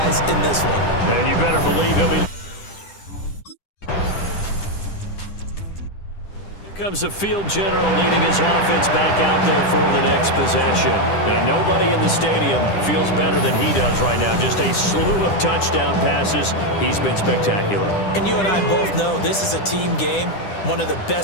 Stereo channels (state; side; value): late; right; 10 ms